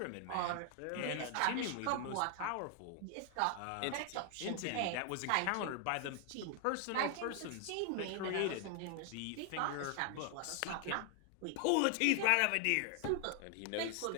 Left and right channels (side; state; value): both; different; correlation 0.00